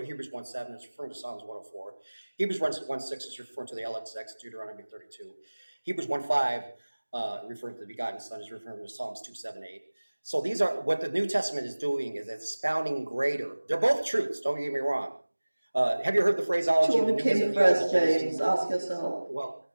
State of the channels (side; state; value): both; inverted; correlation -1.00